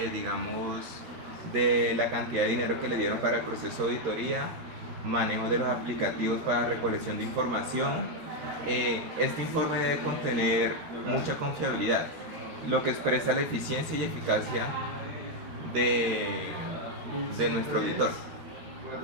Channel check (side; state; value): left; late; 13 ms